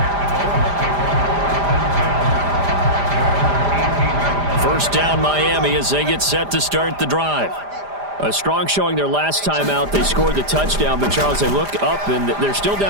First down Miami as they get set to start the drive. A strong showing their last time out. They scored the touchdown, but Charles, they look up and they're still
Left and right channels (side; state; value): left; late; 5.0 ms